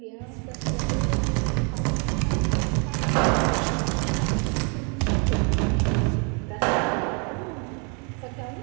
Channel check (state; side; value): quieter; left; 35.8 dB